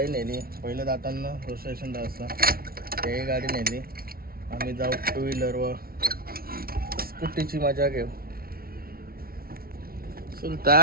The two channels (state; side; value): late; left; 0.44 ms